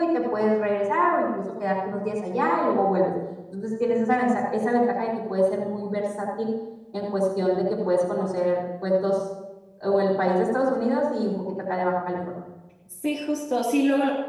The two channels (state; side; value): identical; both; correlation 1.00